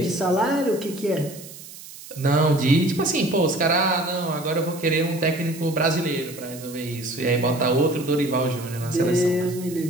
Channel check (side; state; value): right; noise; hiss, 16 dB below the sound